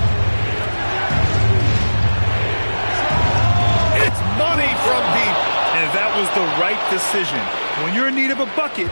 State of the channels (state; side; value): inverted; both; correlation -1.00